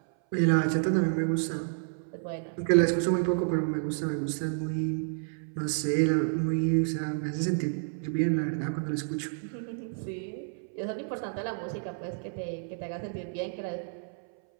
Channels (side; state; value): left; silent; 58 dB below the other